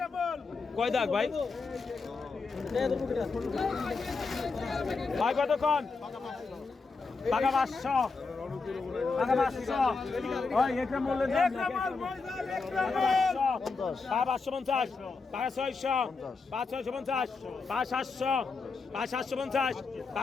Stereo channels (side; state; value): right; quieter; 4.4 dB